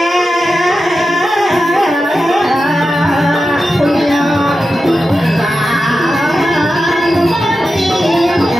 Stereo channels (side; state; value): both; normal; correlation 0.91